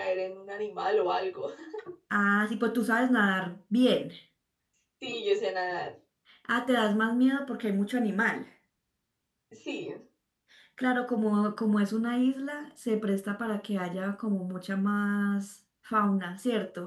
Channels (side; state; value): both; identical; correlation 1.00